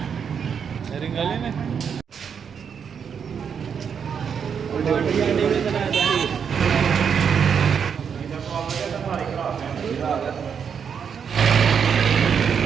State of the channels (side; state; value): left; quieter; 7.1 dB